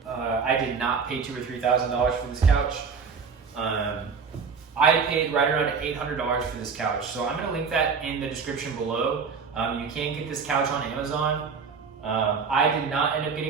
I did not pay $2,000 or $3,000 for this couch. I paid right around $800 for this couch, so I'm going to link that in the description below. You can get this couch on Amazon. I did not end up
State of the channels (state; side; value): quieter; left; 5.5 dB